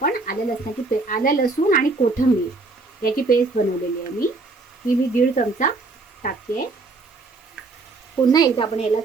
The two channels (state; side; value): quieter; left; 3.6 dB